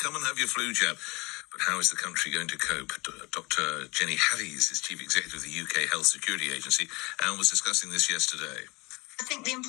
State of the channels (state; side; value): quieter; right; 25.2 dB